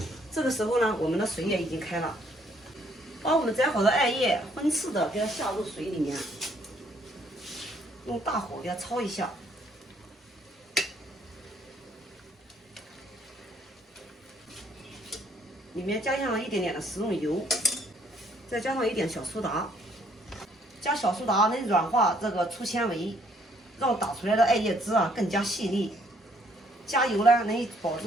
这个时候呢，我们的水也已经开了。把我们摘好的艾叶分次的给它下入水里面，用大火给它焯一下。里面加上了一点点的食用油，再加上一点小苏打。加小苏打能软化这个粗纤维，让打出来的艾叶汁更加细腻。加油呢能保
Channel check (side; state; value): both; normal; correlation 0.66